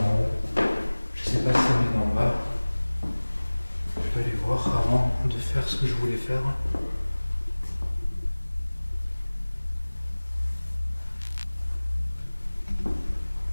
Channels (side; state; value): both; inverted; correlation -1.00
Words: haut. Je sais pas si ça venait d'en bas. Je vais aller voir avant de faire ce que je voulais faire.